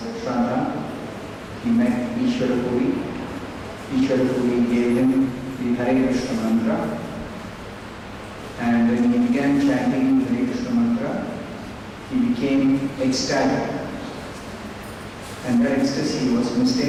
Shraddha. He met Ishvara Puri. Ishvara Puri gave him the Hare Krishna mantra. And when he began chanting the Hare Krishna mantra, he became ecstatic. And that ecstasy was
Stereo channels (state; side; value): identical; both; correlation 1.00